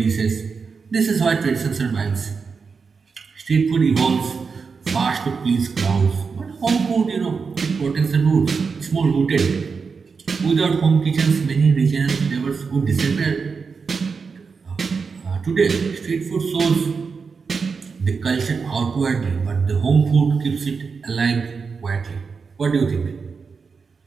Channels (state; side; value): quieter; left; 5.2 dB